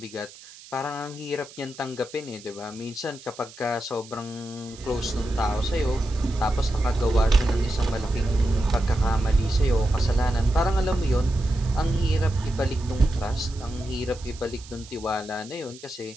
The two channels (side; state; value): right; noise; hiss, 19 dB below the sound